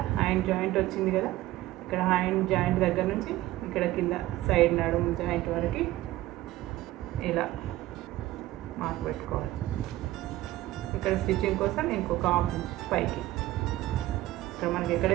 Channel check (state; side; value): quieter; left; 16.3 dB